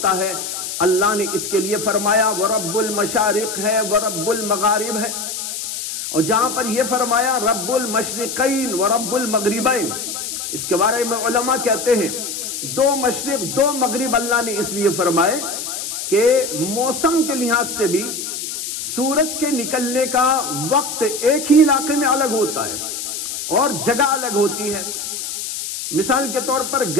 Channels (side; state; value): left; noise; hiss, 5 dB below the sound